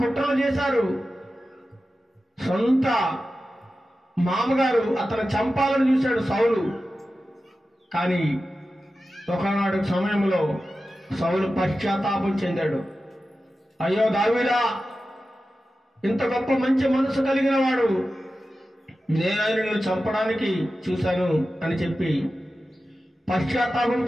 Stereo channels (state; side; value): normal; both; correlation 0.93